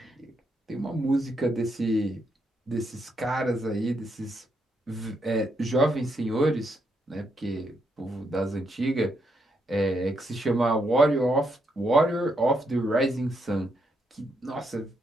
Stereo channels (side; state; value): both; normal; correlation 0.79